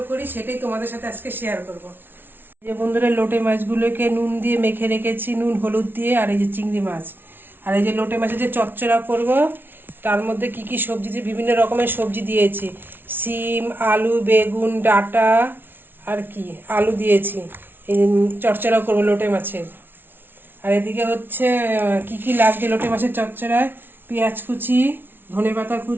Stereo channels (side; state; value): left; late; 0.10 ms